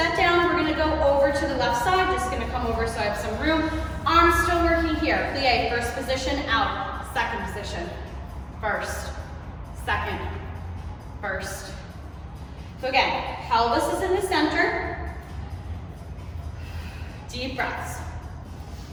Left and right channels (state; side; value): identical; both; correlation 1.00